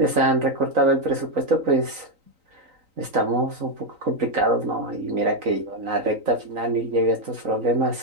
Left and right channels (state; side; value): late; left; 3.9 ms